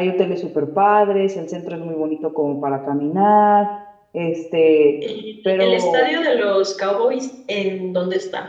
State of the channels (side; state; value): both; identical; correlation 1.00